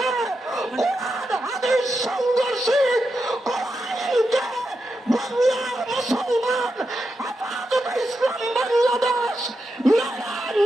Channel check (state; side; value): normal; both; correlation 0.87